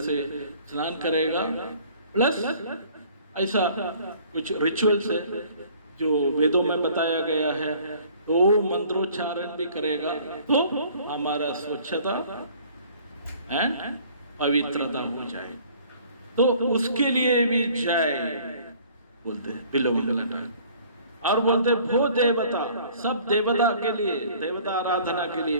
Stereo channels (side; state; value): both; inverted; correlation -0.54